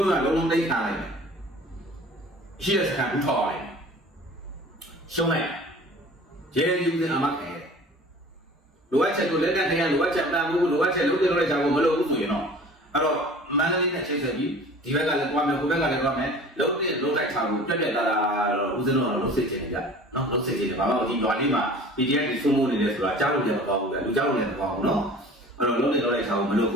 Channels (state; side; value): normal; both; correlation 0.44